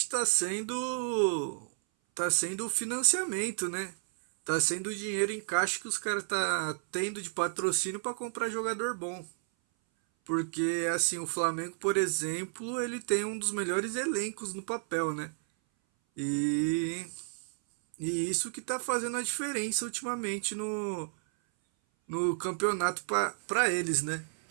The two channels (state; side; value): silent; left; 57 dB below the other